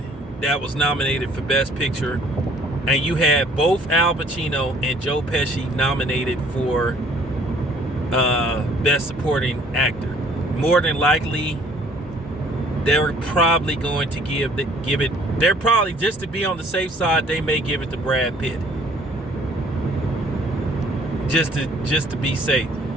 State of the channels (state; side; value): normal; both; correlation 0.57